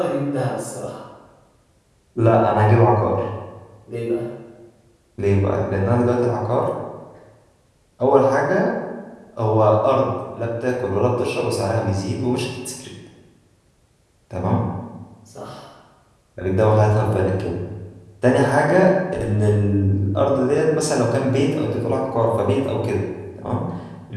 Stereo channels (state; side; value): identical; both; correlation 1.00